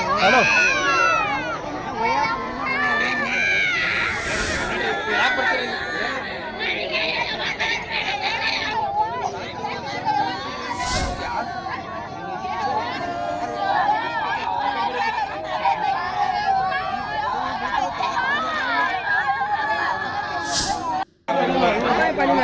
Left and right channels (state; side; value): identical; both; correlation 1.00